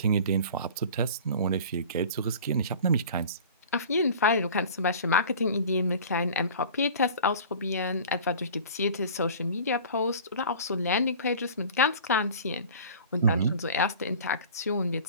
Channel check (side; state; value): both; inverted; correlation -0.41